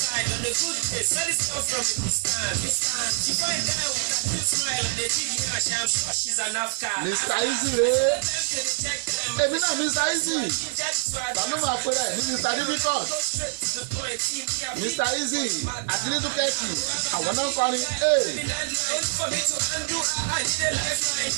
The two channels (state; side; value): silent; left; digital silence